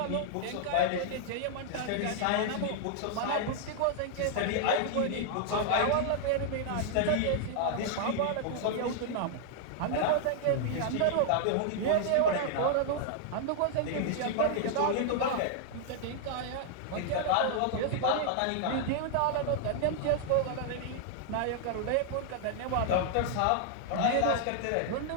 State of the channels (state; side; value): different; both; correlation -0.01